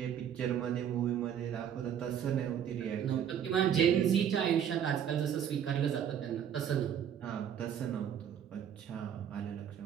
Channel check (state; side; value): quieter; left; 9.0 dB